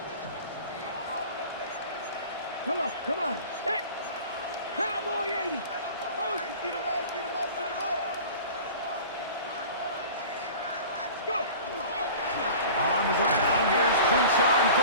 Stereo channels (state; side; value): inverted; both; correlation -0.40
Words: Come on, come on. Set. Cowboy 80. Motion. Get him out, get him out, get him out. Go. On the ground, here's Quinshawn